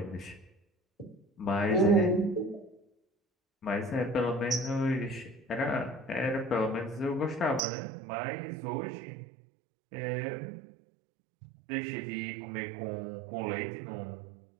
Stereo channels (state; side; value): drops out; left; at 7.6 s